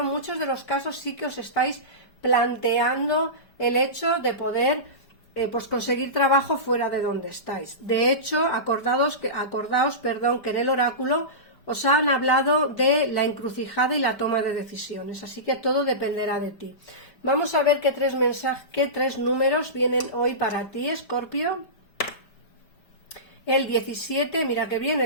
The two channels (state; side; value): late; right; 5.0 ms